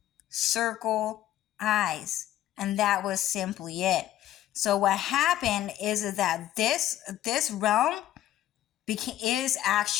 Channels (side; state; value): right; quieter; 13.1 dB